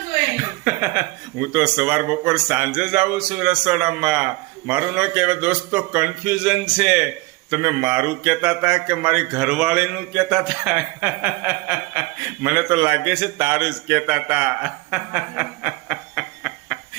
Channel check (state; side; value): quieter; left; 22.6 dB